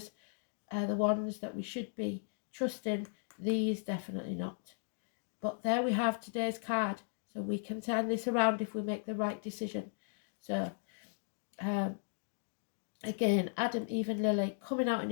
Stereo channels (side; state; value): right; silent; digital silence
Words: are the ones that we should be trusting. These definitely not. But there we have today's card. So we can turn this around if we make the right decision. So again, Adam, Eve and Lily coming out in